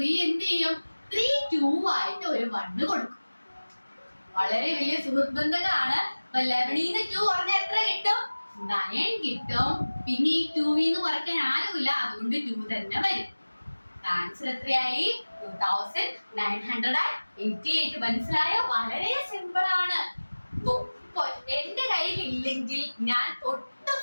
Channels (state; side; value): inverted; both; correlation -1.00